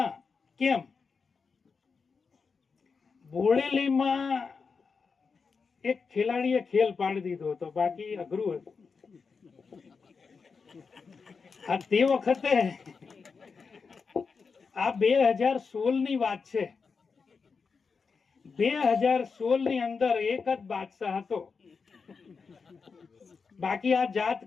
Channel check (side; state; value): right; quieter; 5.1 dB